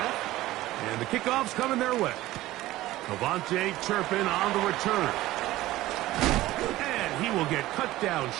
And the kickoff's coming their way. Cavante Turpin on the return. And he will get cut down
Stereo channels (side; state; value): left; quieter; 16.6 dB